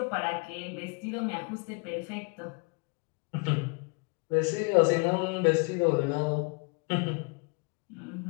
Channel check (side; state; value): right; quieter; 31.6 dB